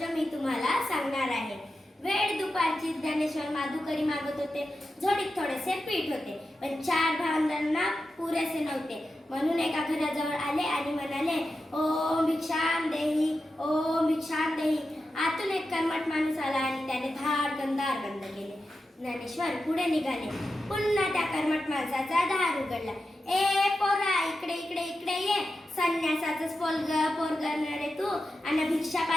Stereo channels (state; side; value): normal; both; correlation 0.91